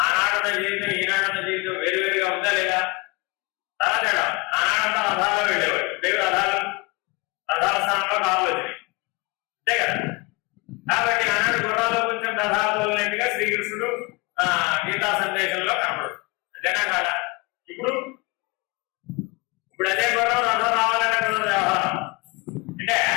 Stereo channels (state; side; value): quieter; right; 26.2 dB